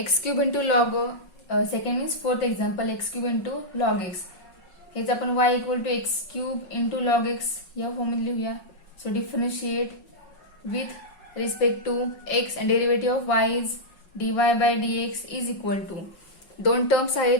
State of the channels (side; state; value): right; late; 5.5 ms